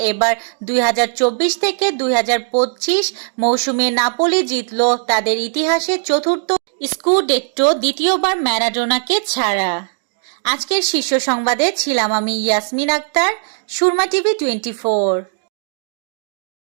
এবার 2024 থেকে 2025 মৌসুমে নাপোলি জিতল তাদের ইতিহাসের চতুর্থ স্কুডেট্টো, দ্বিতীয়বার ম্যারাডোনাকে ছাড়া। আজকের শীর্ষ সংবাদে ছিলাম আমি ইয়াসমিন আক্তার, সুরমা টিভি 24।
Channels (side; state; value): left; silent; digital silence